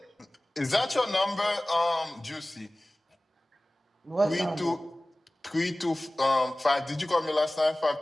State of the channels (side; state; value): both; normal; correlation 0.98